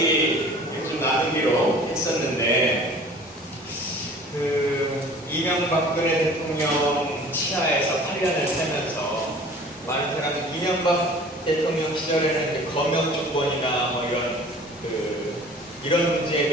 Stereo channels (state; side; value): normal; both; correlation 0.46